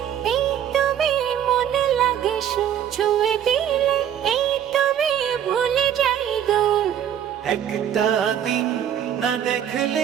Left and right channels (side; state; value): left; quieter; 9.8 dB